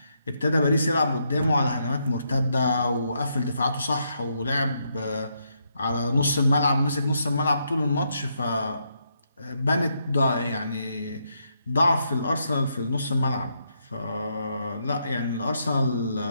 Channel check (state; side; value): inverted; both; correlation -0.78